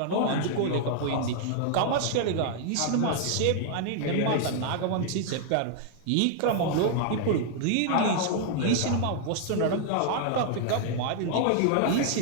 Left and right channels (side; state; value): both; different; correlation -0.01